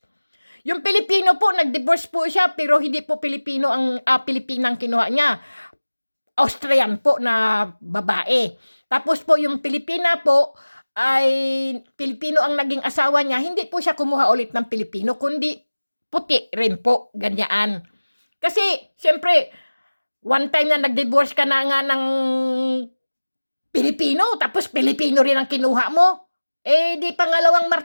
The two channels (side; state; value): both; inverted; correlation -1.00